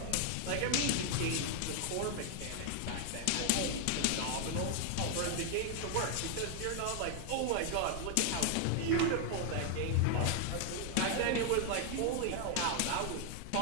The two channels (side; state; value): both; different; correlation 0.00